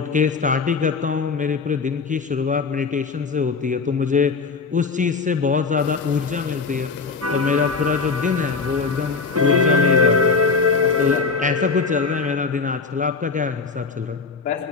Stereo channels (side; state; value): right; quieter; 4.7 dB